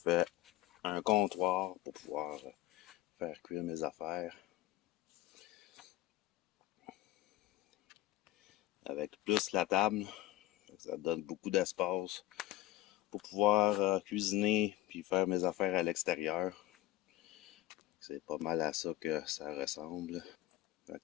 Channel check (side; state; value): right; quieter; 15.8 dB